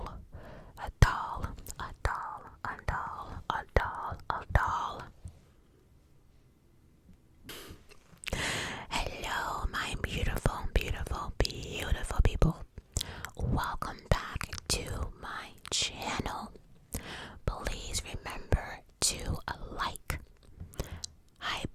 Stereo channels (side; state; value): both; identical; correlation 1.00